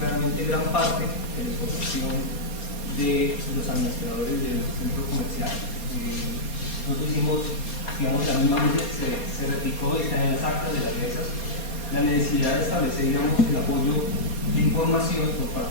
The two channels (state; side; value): late; right; 4.2 ms